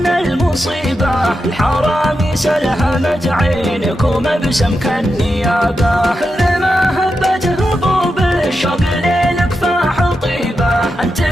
المصيبة، الحرامي سلهمت عينك ومبسم كالنيابة. كل ما هبت هبوب الشوق ليلك فاح طيبة،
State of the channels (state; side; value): normal; both; correlation 0.88